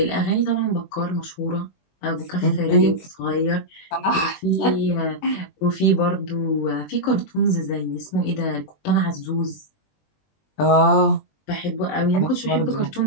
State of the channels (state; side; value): late; right; 20 ms